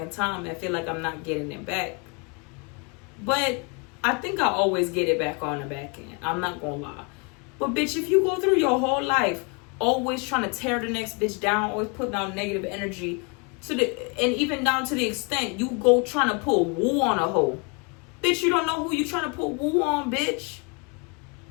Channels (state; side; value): quieter; right; 32.3 dB